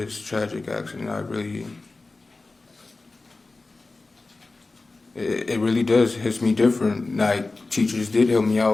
tragic accident. It really does hit me different. Like, teachers did help me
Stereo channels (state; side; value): quieter; right; 3.5 dB